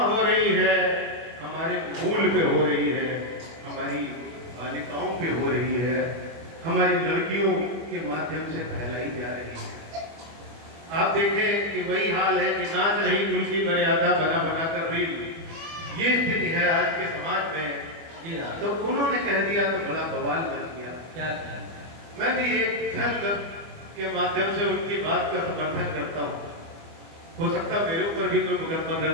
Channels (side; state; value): left; late; 25 ms